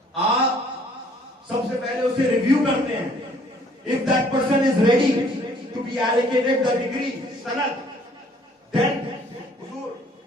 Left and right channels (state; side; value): normal; both; correlation 0.59